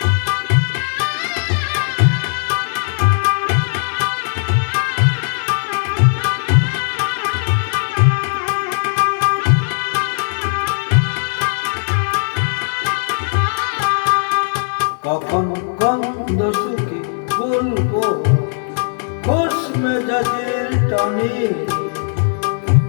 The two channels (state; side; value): silent; right; digital silence